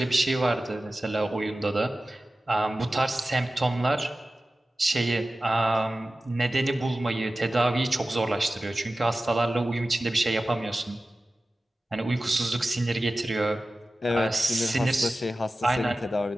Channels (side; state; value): both; normal; correlation 0.95